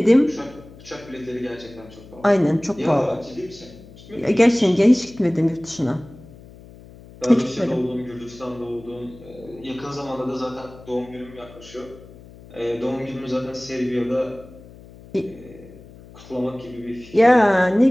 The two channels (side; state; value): left; noise; hum, 20 dB below the sound